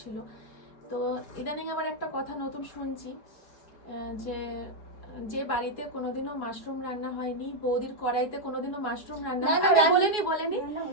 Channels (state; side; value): late; right; 4.6 ms